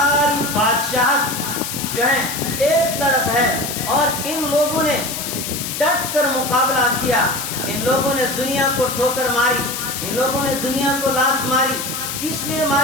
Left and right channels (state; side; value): noise; left; hiss, 5 dB below the sound